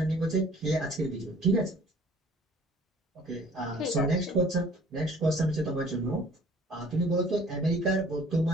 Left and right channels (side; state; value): both; normal; correlation 0.52